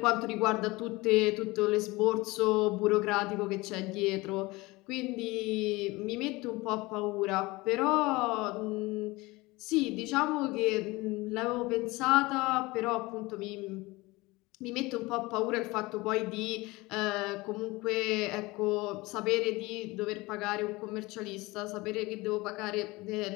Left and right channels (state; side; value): quieter; right; 22.1 dB